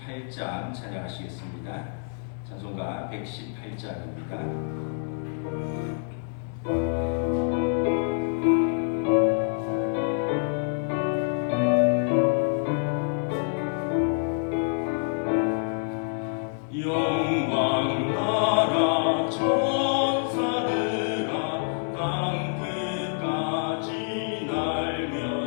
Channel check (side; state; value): right; silent; digital silence